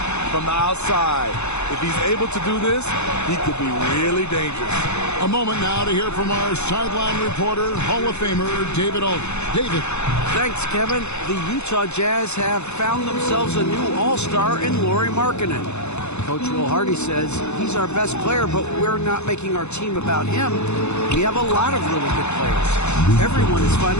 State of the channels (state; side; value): late; right; 0.81 ms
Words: from the outside. If he's able to do this, he could be really dangerous. A moment now to hear from our sideline reporter, Hall of Famer David Aldridge. David. Thanks, Kevin. The Utah Jazz have found themselves a new all-star in Lauri Markkanen. Coach Will Hardy says he's our best player, but we're not making our team about him. We have a lot of really good players. Everyone is